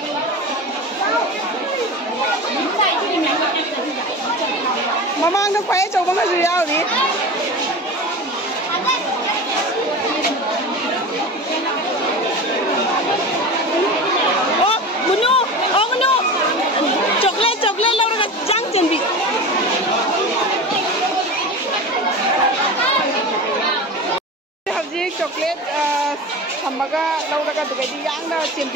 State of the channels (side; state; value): both; normal; correlation 0.30